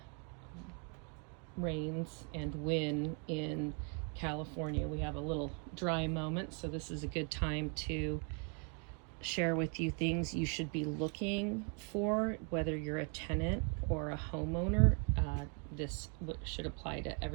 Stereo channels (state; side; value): quieter; left; 38.5 dB